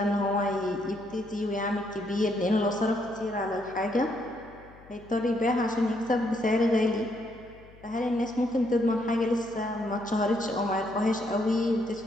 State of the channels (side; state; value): left; noise; hum, 23 dB below the sound